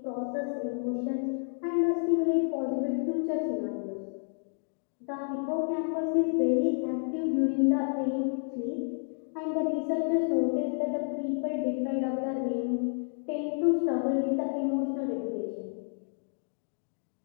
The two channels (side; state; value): right; silent; 58 dB below the other